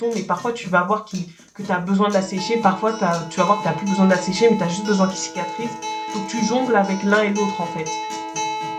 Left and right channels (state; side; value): identical; both; correlation 1.00